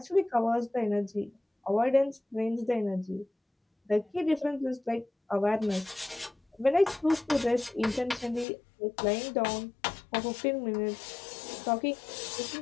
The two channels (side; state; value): right; drops out; at 8.5 s